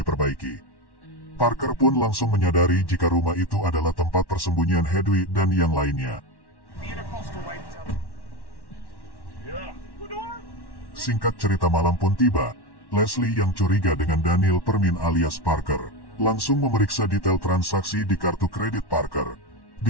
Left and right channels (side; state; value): right; late; 1.1 ms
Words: Parker pun langsung menyadari jika rumah itu adalah tempat persembunyian Hedwig dan yang lainnya. Singkat cerita, malam pun tiba. Leslie yang curiga dengan Daniel Permin alias Parker langsung memeriksa detail transaksi di kartu kredit Parker.